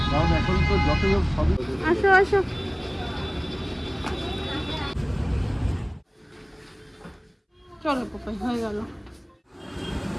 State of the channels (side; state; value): both; identical; correlation 1.00